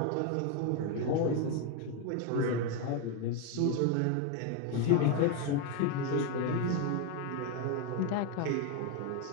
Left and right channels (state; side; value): different; both; correlation 0.02